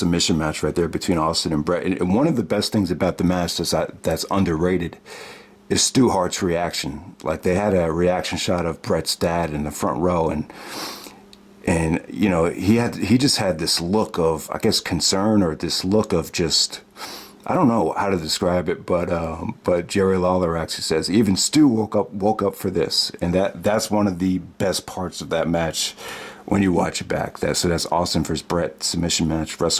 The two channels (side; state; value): both; identical; correlation 1.00